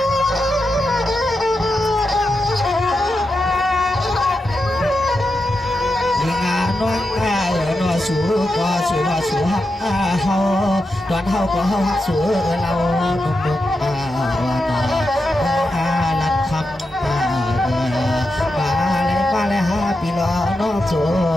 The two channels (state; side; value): normal; both; correlation 0.88